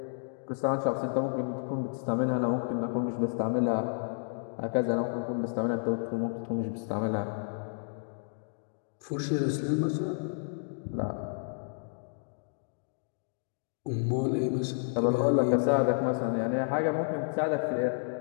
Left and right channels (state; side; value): silent; right; digital silence